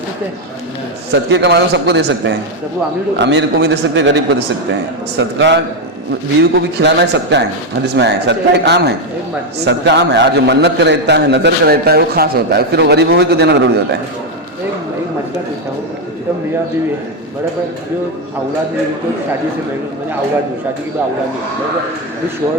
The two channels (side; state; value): both; normal; correlation 0.05